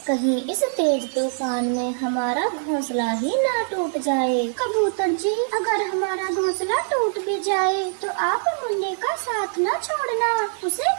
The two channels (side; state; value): left; silent; digital silence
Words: कहीं इस तेज तूफान में हमारा घोंसला ही ना टूट जाए। कबूतर जी, अगर हमारा घोंसला टूट भी जाए तो आप मुन्ने का साथ न छोड़ना, उसे